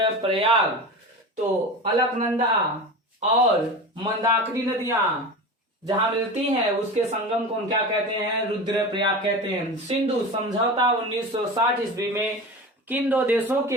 तो अलकनंदा और मंदाकिनी नदियां जहां मिलती हैं उसके संगम को हम क्या कहते हैं? रुद्रप्रयाग कहते हैं। सिंधु समझौता 1960 ईस्वी में किन 2 देशों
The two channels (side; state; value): both; normal; correlation 0.29